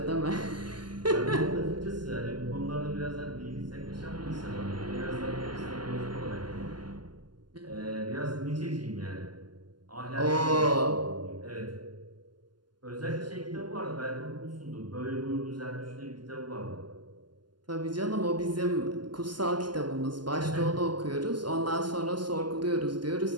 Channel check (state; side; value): late; left; 0.71 ms